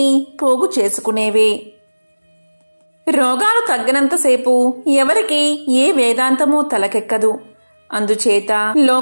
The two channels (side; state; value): both; inverted; correlation -1.00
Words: పోగు చేసుకునేవే. రోగాలు తగ్గినంతసేపు ఎవరికి ఏ వేదాంతమూ తలకెక్కదు. అందుచేత